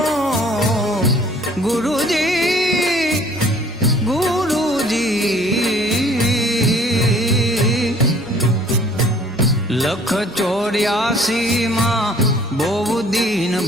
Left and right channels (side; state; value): both; normal; correlation 0.55